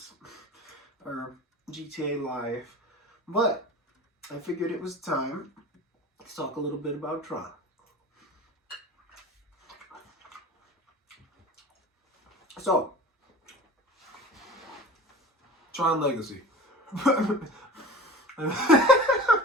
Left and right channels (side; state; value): both; normal; correlation 0.37